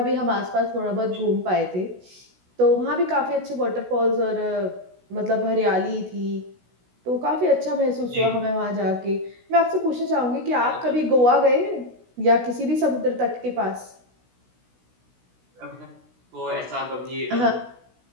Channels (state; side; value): late; left; 16 ms